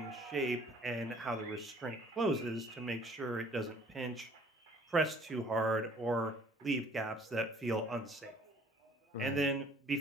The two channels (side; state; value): both; normal; correlation 0.56